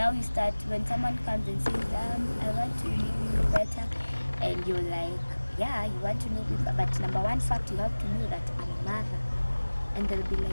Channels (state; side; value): inverted; both; correlation -1.00